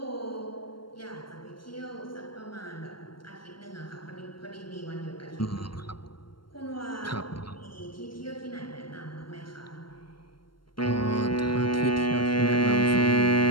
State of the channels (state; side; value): late; right; 0.72 ms